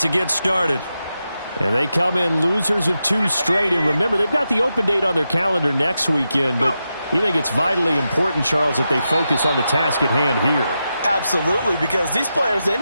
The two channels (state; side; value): inverted; both; correlation -0.88